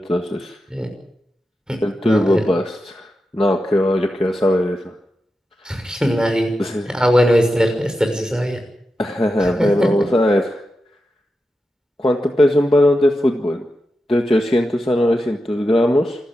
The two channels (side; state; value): both; normal; correlation 0.90